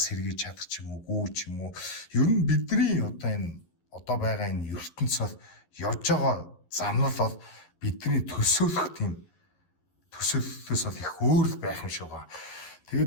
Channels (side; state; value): right; late; 11 ms